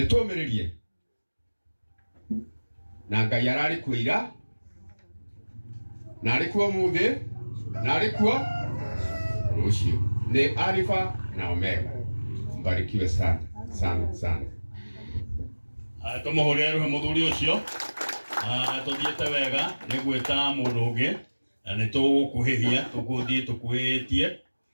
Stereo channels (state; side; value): inverted; both; correlation -1.00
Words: na Ngai ararĩ kuo ira na arĩ kuo ũmũthĩ na arĩ kuo rũciũ. Nĩ Alpha na Omega. Mbarikiwe sana sana sana. Tũmũhũrĩre rũhĩ mũthuri ũcio. Tũthiĩte wega nĩ gwĩta mũndũ ũngĩ na nĩtũgũkuhĩhia tũkuhĩhĩtie